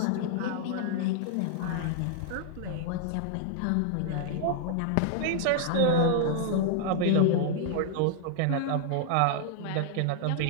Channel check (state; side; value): different; both; correlation -0.01